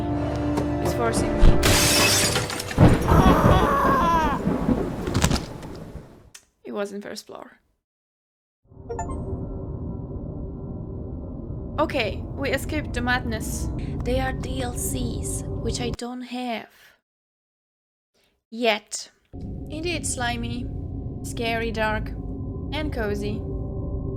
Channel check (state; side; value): identical; both; correlation 1.00